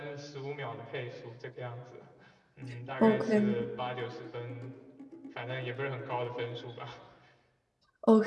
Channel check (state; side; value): identical; both; correlation 1.00